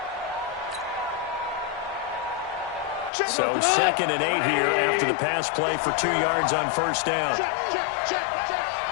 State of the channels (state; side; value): drops out; right; at 3.1 s